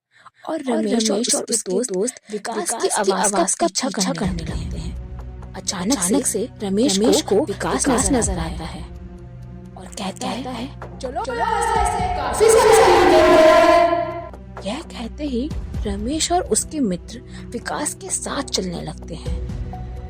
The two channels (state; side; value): identical; both; correlation 1.00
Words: और रमेश और उसके दोस्त विकास की आवाज का पीछा करने लगते हैं। अचानक से रमेश को विकास नजर आता है और कहता है, चलो काफी समय। यह कहते ही रमेश और उसके मित्र विकास के साथ चलने लगते हैं